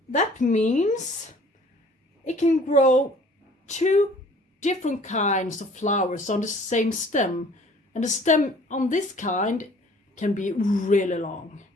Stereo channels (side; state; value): both; normal; correlation 0.52